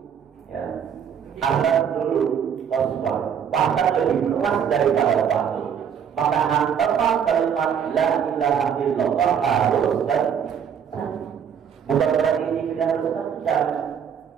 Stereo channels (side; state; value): left; quieter; 7.9 dB